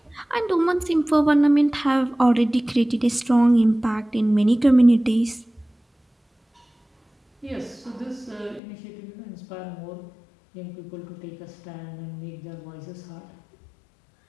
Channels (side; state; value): right; drops out; at 8.6 s